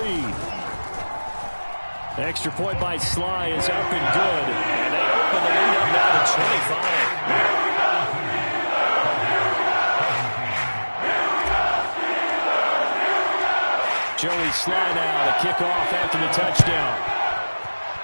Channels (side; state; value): both; inverted; correlation -1.00